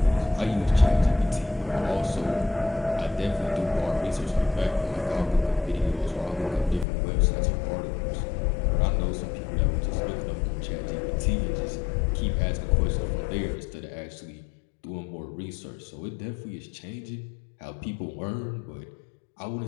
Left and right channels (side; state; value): right; drops out; at 6.9 s